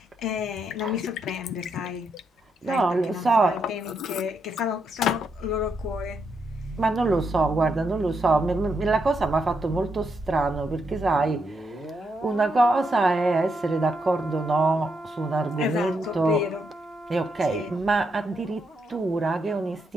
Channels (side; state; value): both; normal; correlation 0.80